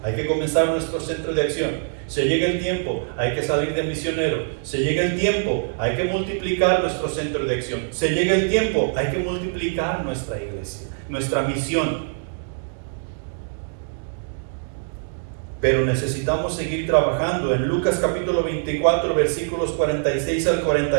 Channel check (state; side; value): silent; left; digital silence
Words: hay que comenzar nuestro centro de acción. Se llega el tiempo, hay que salir de misionero. Se llega el tiempo, hay que multiplicar nuestro centro de acción. Se llega el tiempo, hay que multiplicar nuestra iglesia, nuestra misión. Pero necesitamos seguir trabajando. En Lucas capítulo 24, versículos 46 al